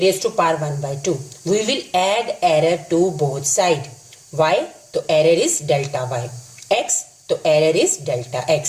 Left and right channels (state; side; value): identical; both; correlation 1.00